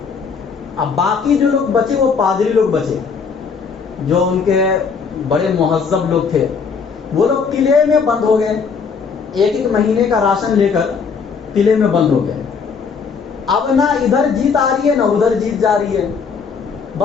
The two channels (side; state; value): right; quieter; 5.7 dB